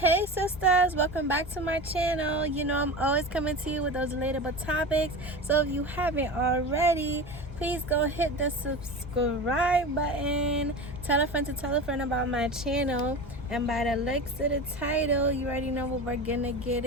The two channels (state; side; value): normal; both; correlation 0.28